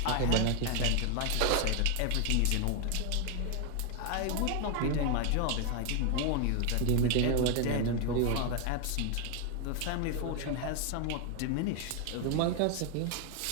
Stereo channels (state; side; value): different; both; correlation 0.01